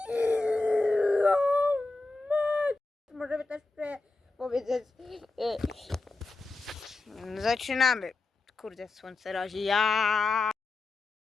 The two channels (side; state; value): right; quieter; 3.4 dB